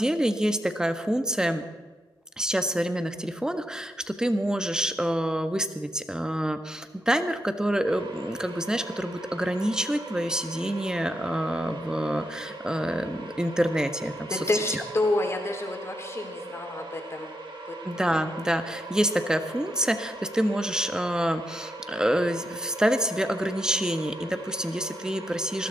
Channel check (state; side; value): normal; both; correlation 0.82